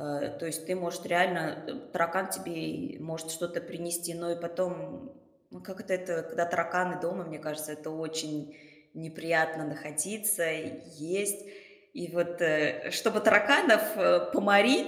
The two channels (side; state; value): both; identical; correlation 1.00